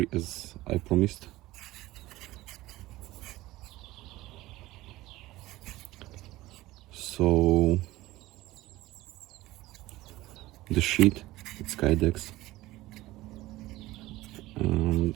as I promised. So the sheath, it's kydex, and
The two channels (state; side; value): quieter; left; 17.8 dB